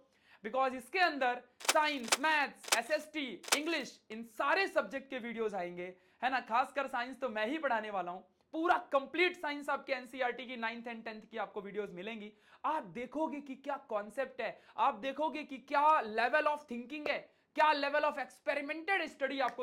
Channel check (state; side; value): identical; both; correlation 1.00